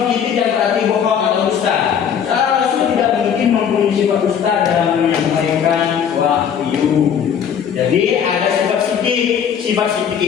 sidik yang berarti bohong atau dusta. Para rasul tidak mungkin mempunyai sifat dusta dalam menyampaikan wahyu. Jadi ada sifat sidik. Sifat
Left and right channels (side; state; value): right; quieter; 8.1 dB